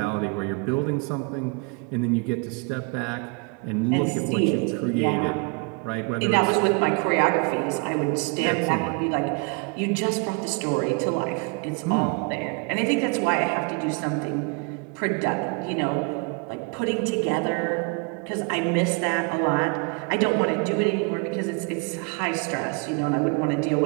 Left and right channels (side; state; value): left; quieter; 33.2 dB